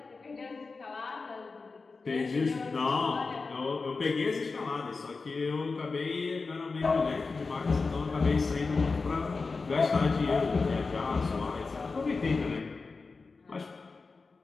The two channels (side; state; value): right; quieter; 4.2 dB